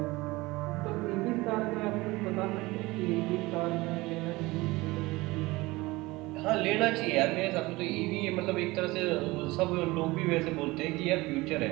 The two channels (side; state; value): left; quieter; 21.2 dB